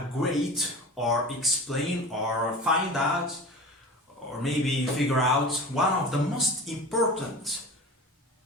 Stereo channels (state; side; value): normal; both; correlation 0.34